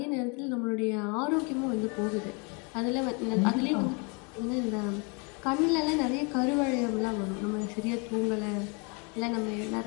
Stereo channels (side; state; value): right; quieter; 33.0 dB